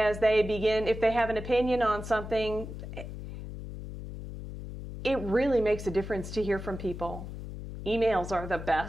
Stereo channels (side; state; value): left; noise; hum, 9 dB below the sound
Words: they begin, if they have an opinion on something, it really makes a difference to hear from people. Emails are the